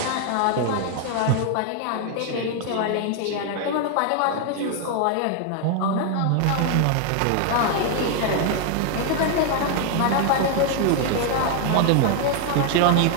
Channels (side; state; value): both; different; correlation 0.01